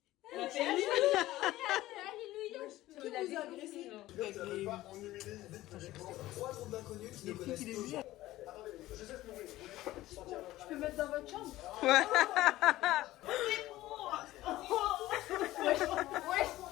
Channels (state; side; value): quieter; right; 16.1 dB